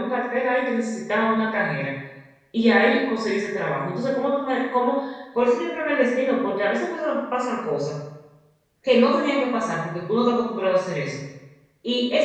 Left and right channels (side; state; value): both; identical; correlation 1.00